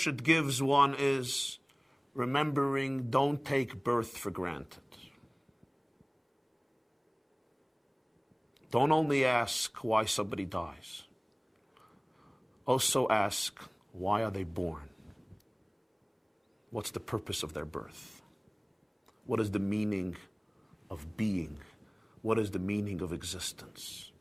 it gives one is remembering, don't take birth for granted. Don't only ask why somebody dies. Also ask, why are they born? What's the purpose of their birth? What is the meaning of being? What is the meaning of existence?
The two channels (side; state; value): both; identical; correlation 1.00